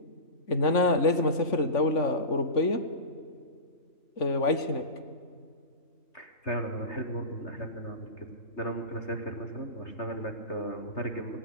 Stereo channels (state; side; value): late; right; 3.5 ms